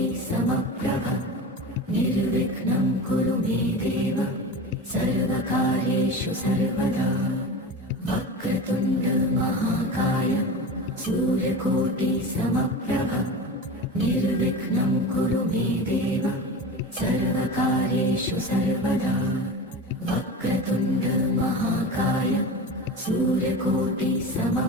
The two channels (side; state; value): both; normal; correlation 0.29